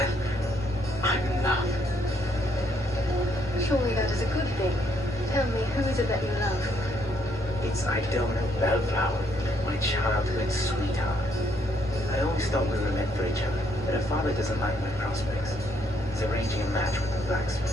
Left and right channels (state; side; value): normal; both; correlation 0.70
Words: I'm in love. Surely that is a good thing. Tell me, who is it that you love? It's Idona Bellflower, my childhood sweetheart. I always thought we were meant for each other, but her father doesn't like my prospects. He's arranging a match with the